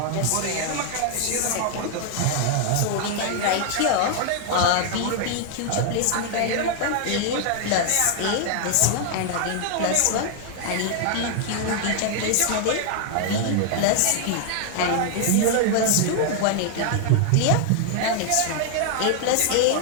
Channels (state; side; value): different; both; correlation 0.00